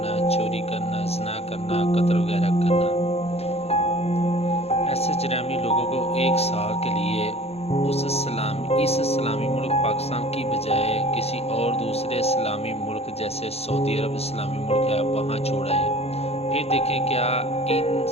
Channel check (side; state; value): right; late; 0.30 ms